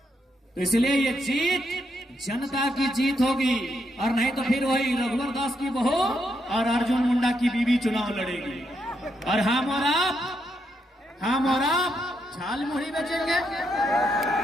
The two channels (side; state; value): both; normal; correlation 0.79